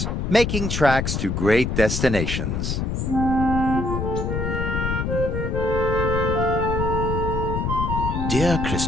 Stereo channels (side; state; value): left; noise; rumble, 1 dB below the sound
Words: making tracks to great destinations. Dear